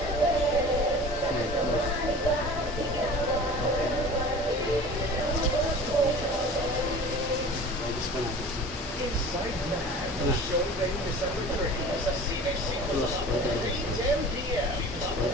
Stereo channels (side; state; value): both; normal; correlation 0.40